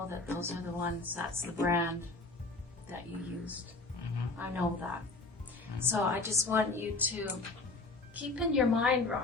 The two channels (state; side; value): quieter; right; 3.5 dB